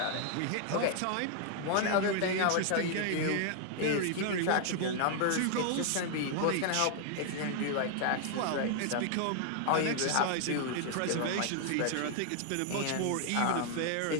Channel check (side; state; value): both; different; correlation 0.00